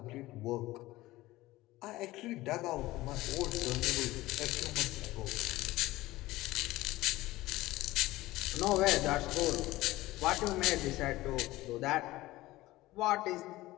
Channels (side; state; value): right; quieter; 17.9 dB